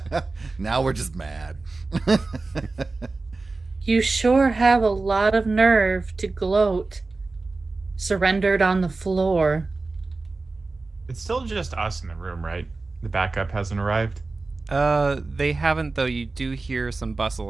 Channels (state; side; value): quieter; left; 3.6 dB